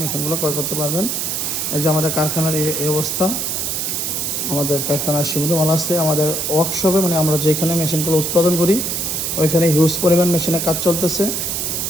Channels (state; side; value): noise; right; hiss, 1 dB below the sound